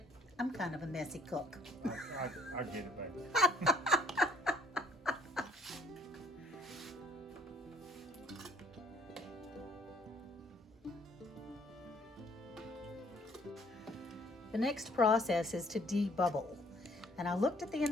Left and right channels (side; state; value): both; normal; correlation 0.60